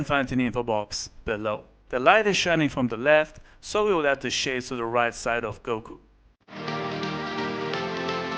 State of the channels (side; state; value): both; identical; correlation 1.00